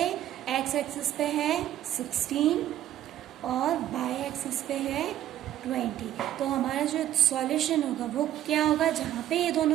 एक्स एक्सिस पे है 16 और वाई एक्सिस पे है 20। तो हमारा जो सॉल्यूशन होगा वो क्या होगा, जहाँ पे ये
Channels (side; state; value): left; quieter; 12.2 dB